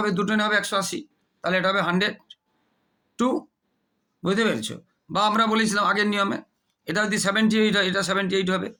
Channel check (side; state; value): both; identical; correlation 1.00